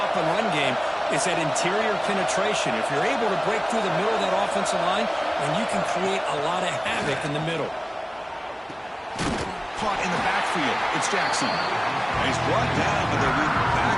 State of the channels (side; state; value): both; identical; correlation 1.00